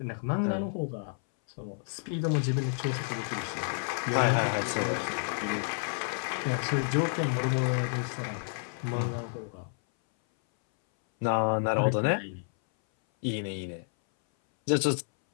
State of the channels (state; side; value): silent; right; 58 dB below the other